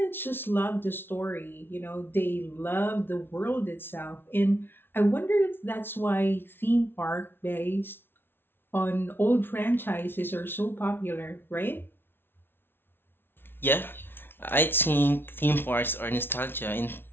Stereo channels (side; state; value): right; late; 0.11 ms